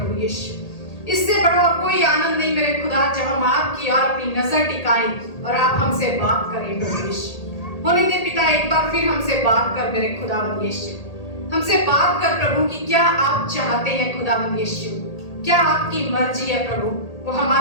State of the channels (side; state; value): right; late; 1.8 ms